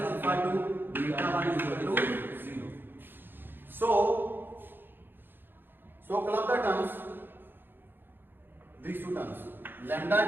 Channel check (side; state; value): left; late; 0.098 ms